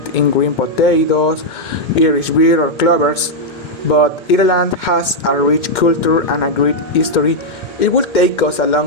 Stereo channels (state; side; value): late; right; 2.1 ms